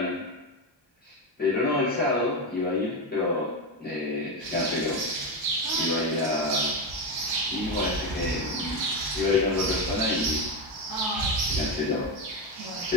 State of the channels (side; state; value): both; normal; correlation 0.12